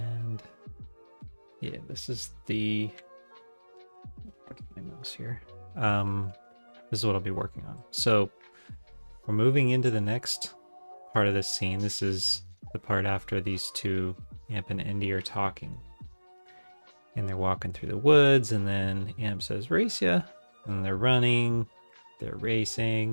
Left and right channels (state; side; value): inverted; both; correlation -1.00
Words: yeah, this is the... Get my mouse here. This is what I'll be working on. So we're moving into the next part of this scene. This is the part after these two, Amp and Indy, are talking. And they're walking through the woods, and then Amp says, "Race ya!" And they're running, they're